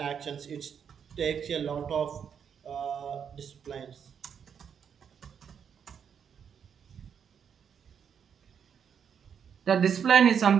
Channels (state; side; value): quieter; left; 7.6 dB